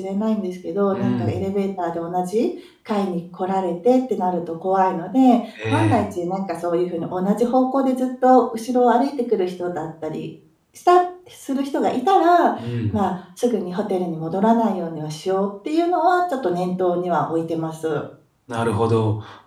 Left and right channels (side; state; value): both; identical; correlation 1.00